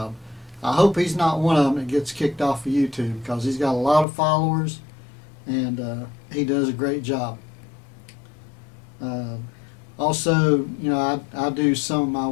I hope he's not one of them that gets kicked off of YouTube, because he's got a lot of followers and he does a great job. Also, you know, I do some of my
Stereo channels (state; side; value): drops out; right; at 4.0 s